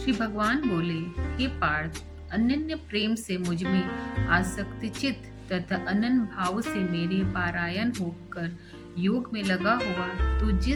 भगवान बोले, हे पार्थ, अनन्य प्रेम से मुझ में आसक्ति चित्त तथा अनन्य भाव से मेरे पारायण होकर योग में लगा हुआ तू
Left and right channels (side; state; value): both; identical; correlation 1.00